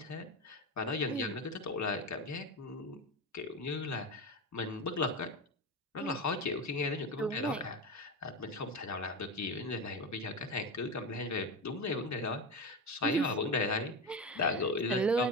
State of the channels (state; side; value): normal; both; correlation 0.20